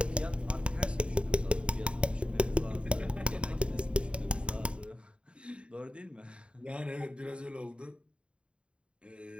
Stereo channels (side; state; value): left; late; 0.056 ms